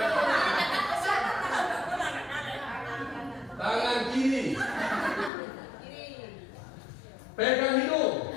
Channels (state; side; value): drops out; right; at 5.3 s